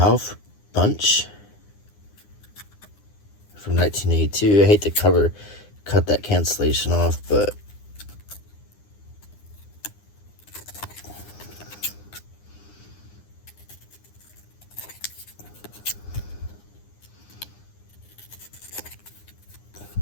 Bunch from 1982. I hate to cut that cancellation off, but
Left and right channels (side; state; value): right; late; 9.8 ms